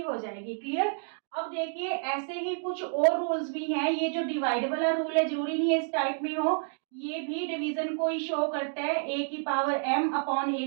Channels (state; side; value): silent; left; digital silence